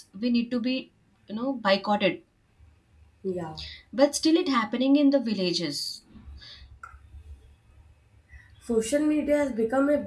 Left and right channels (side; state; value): both; identical; correlation 1.00